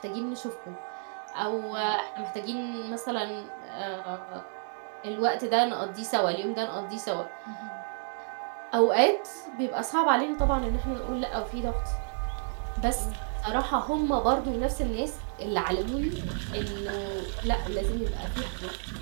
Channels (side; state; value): left; silent; digital silence